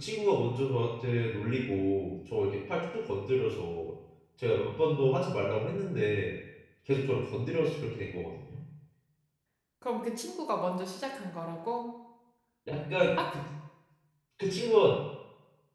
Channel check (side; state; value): both; identical; correlation 1.00